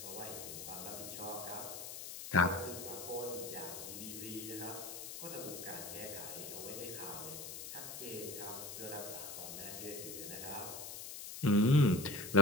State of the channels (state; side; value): noise; left; hiss, 8 dB below the sound